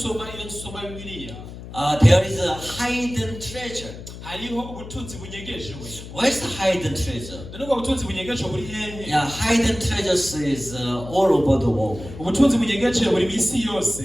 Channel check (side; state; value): left; noise; hum, 13 dB below the sound